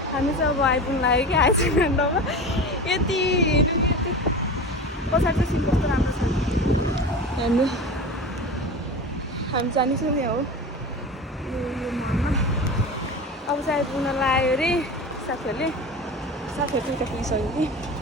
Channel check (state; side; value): normal; both; correlation 0.30